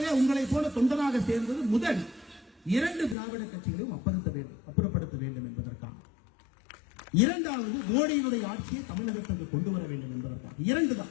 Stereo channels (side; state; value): right; drops out; at 3.2 s